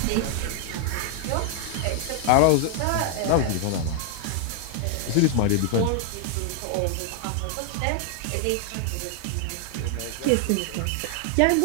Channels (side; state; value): both; different; correlation 0.00